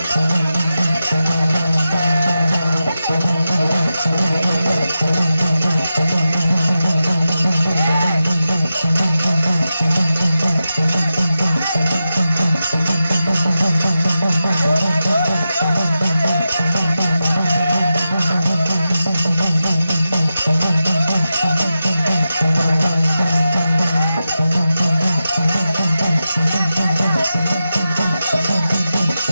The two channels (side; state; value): both; inverted; correlation -0.91